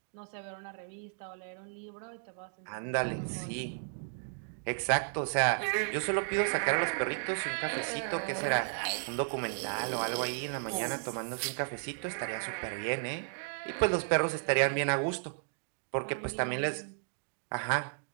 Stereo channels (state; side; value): silent; left; digital silence